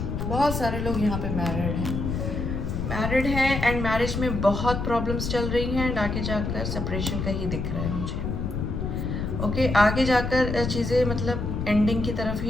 बहुत सारे लोग यहाँ पे मैरिड हैं एंड मैरिज में बहुत प्रॉब्लम्स चल रही हैं, एंड आगे जाकर सेपरेशन का ही दिख रहा है मुझे। ओके, आगे जाकर चीज़ें मतलब एंडिंग की तरफ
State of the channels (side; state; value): left; noise; rumble, 3 dB below the sound